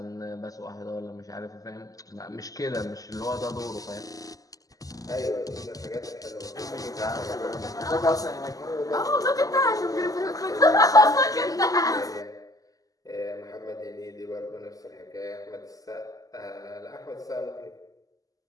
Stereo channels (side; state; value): right; late; 0.17 ms